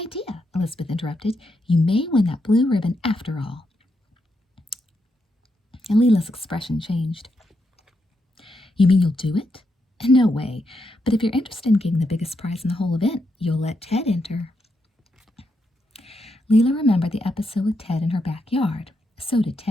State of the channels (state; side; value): normal; both; correlation 0.82